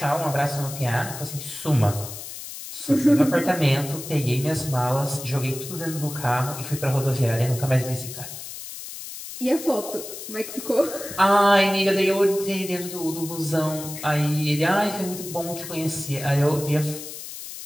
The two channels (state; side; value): noise; left; hiss, 11 dB below the sound